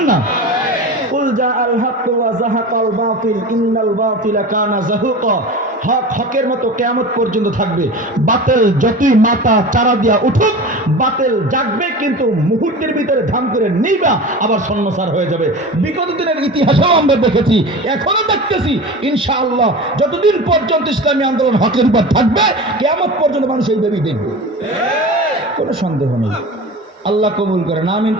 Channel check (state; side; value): normal; both; correlation 0.32